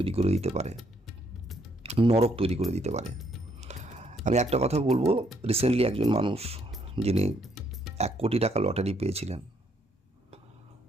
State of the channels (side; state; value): both; normal; correlation 0.70